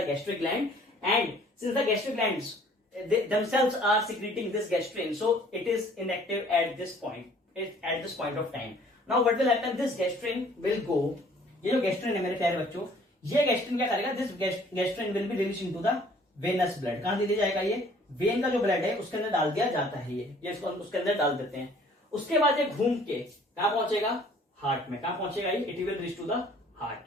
gastric gland and since the gastric glands themselves are secreting this gastrin, so it is inactive at this point of time. Now what will happen? This gastrin will go, ये जो gastrin है मेरे प्यारे बच्चों, ये gastrin क्या करेगा? This gastrin will be released into the venous blood. कहां दे दिया जाएगा? ये वेन का जो ब्लड है उसके अंदर डाल दिया जाता है। ये इसको उसके अंदर डाल देते हैं। उसके बाद ये घूम के कहां पहुंचेगा? हार्ट में। कहां पहुंचेगा ये? It will reach to the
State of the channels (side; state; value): both; normal; correlation 0.56